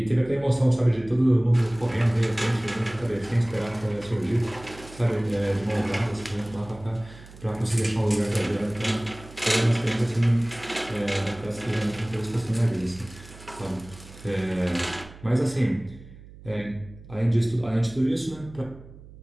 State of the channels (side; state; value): right; noise; hum, 19 dB below the sound